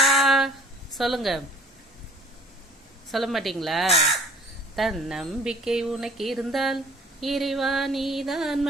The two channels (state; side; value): normal; both; correlation 0.51